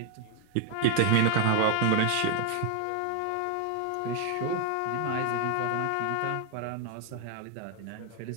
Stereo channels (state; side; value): different; both; correlation 0.00